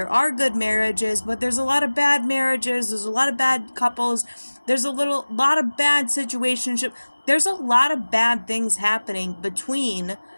are good marriages, but there's a lot of bad marriages. There's a lot of bad couples. There's lot of bad situationship. There's a lot of bad things happening between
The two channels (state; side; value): inverted; both; correlation -1.00